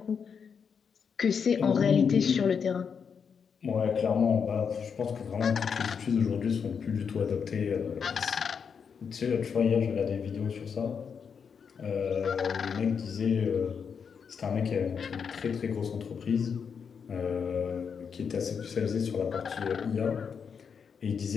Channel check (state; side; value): quieter; right; 6.5 dB